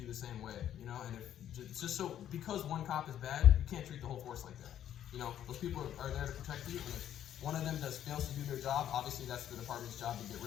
the same way, and it's just so, because one cop is bad, you can't treat the whole force like that. Those people are there to protect you, and if one of them fails to do their job, obviously that's the department's job to get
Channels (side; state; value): right; quieter; 10.8 dB